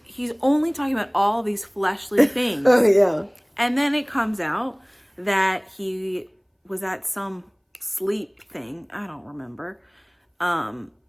only talking about all these fleshly things. Oh, yeah. And then it comes out that he was at some sleep thing. I don't remember. And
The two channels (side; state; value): both; identical; correlation 1.00